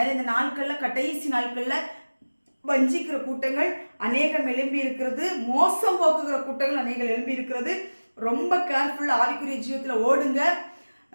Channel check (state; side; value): inverted; both; correlation -1.00